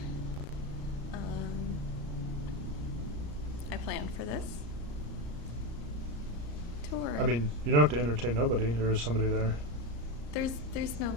I planned for this tour. I mean, you don't have to entertain nobody. There is somebody there. There's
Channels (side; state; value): left; late; 34 ms